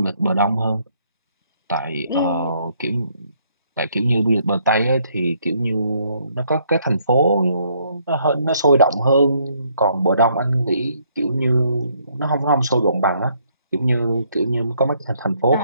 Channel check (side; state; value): both; inverted; correlation -0.69